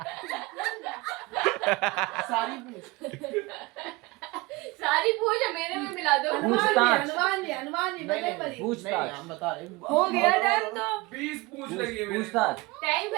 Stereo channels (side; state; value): left; quieter; 22.8 dB